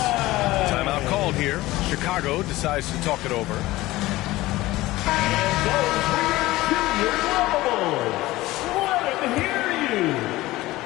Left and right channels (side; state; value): right; quieter; 18.1 dB